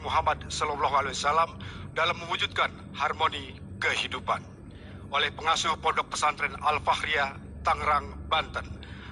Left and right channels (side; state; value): both; identical; correlation 1.00